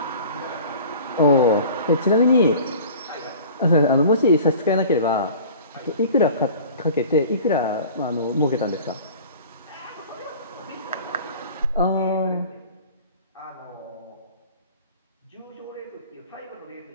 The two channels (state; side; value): inverted; both; correlation -0.43